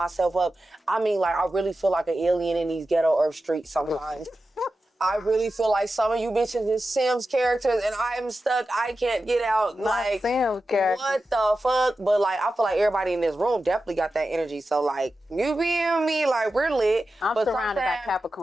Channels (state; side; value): normal; both; correlation 0.92